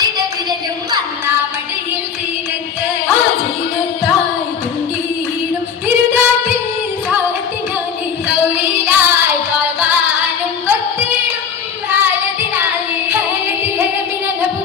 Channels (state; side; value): quieter; right; 7.1 dB